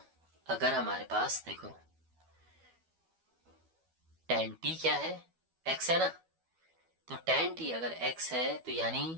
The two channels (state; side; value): late; left; 12 ms